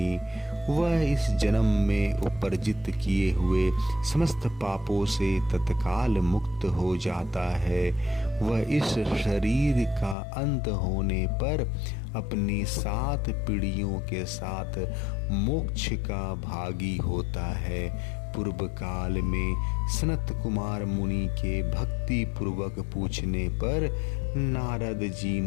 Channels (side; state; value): right; drops out; at 10.2 s